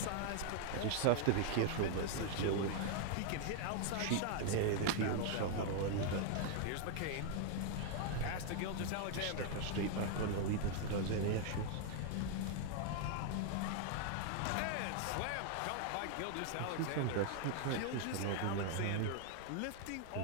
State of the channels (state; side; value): different; both; correlation 0.00